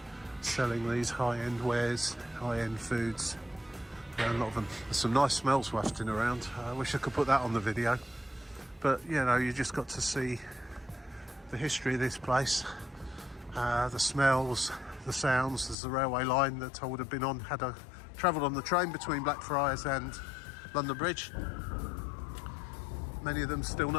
selling these high-end wares, high-end foods. A lot of them. There's some nice smells wafting around. I wish I could put that on the video, but you know, you just got to see the history of this place, the smells, the sounds. There's a railway line that I would have been on had I travelled on the train between Blackfriars and London Bridge. Many of them still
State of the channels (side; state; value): right; drops out; at 15.8 s